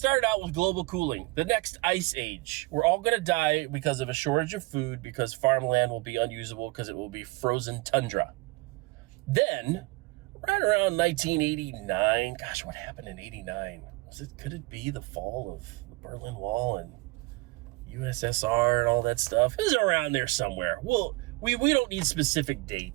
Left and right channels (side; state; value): left; quieter; 24.1 dB